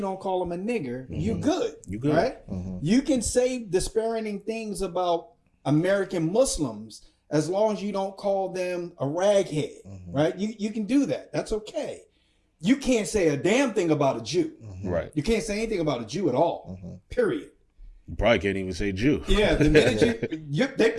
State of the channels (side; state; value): both; identical; correlation 1.00